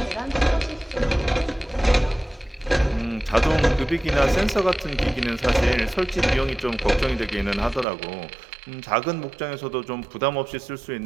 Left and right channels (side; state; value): left; drops out; at 7.9 s